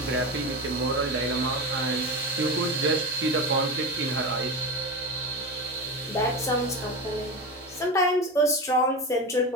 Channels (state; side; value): normal; both; correlation 0.22